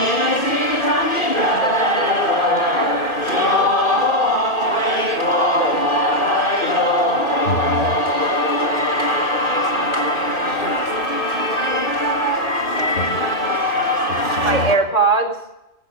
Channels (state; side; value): late; right; 2.5 ms